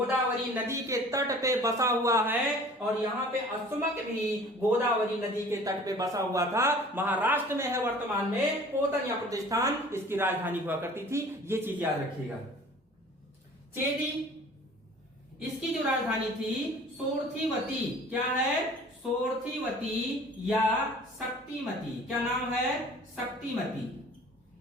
नदी के तट पे बसा हुआ है। और यहाँ पे अश्वमत भी गोदावरी नदी के तट पे बसा हुआ था, महाराष्ट्र में है वर्तमान में। पोतन या प्रतिष्ठान इसकी राजधानी हुआ करती थी, ये चीज याद रखिएगा। चेदी, इसकी जो राजधानी थी सोरथीवती। क्या है, सोरथीवती या शक्तिमती। क्या नाम है, शक्तिमती।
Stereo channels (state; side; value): normal; both; correlation 0.48